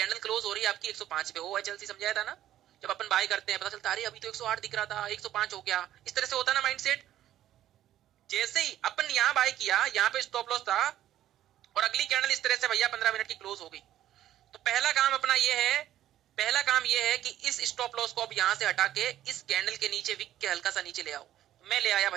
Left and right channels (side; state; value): left; quieter; 12.5 dB